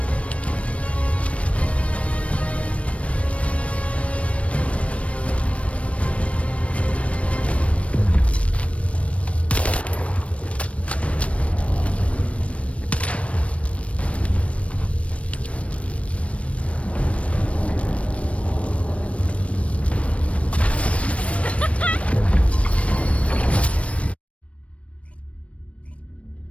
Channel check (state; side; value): late; right; 0.063 ms